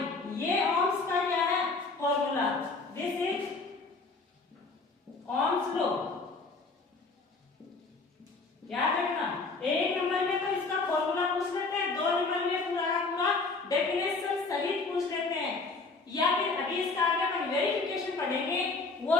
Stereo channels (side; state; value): right; quieter; 3.9 dB